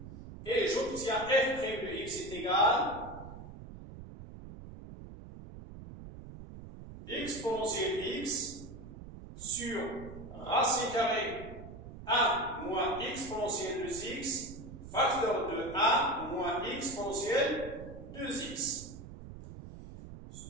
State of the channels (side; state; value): right; noise; rumble, 13 dB below the sound